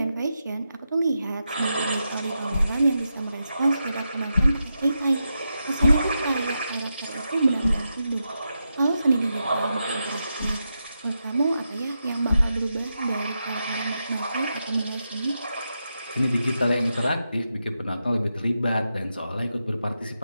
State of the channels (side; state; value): both; inverted; correlation -0.87